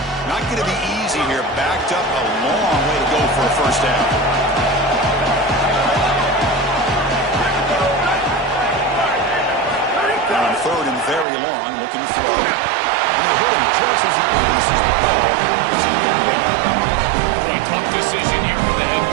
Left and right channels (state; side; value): drops out; left; at 11.2 s